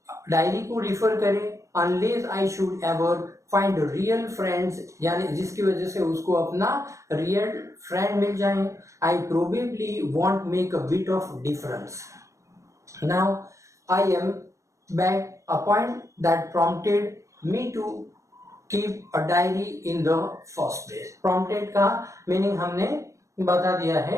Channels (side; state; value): left; late; 0.15 ms